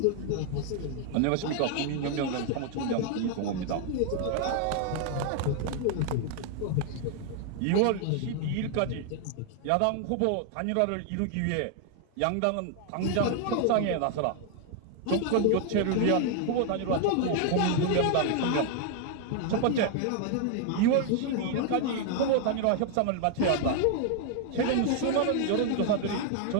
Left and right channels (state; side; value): different; both; correlation 0.00